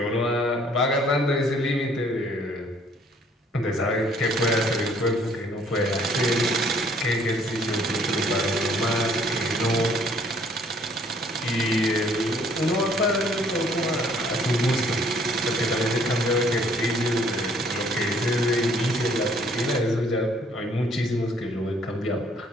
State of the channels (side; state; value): both; normal; correlation 0.61